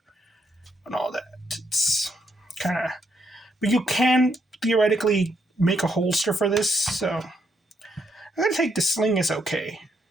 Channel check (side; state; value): both; normal; correlation 0.76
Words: and all that. It's kind of, but you can theoretically make a holster for this. So I'm gonna take the sling as okay.